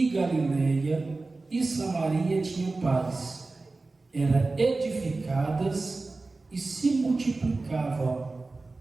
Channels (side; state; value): left; quieter; 3.5 dB